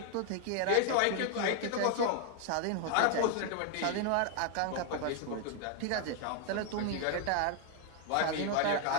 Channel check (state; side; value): different; both; correlation 0.00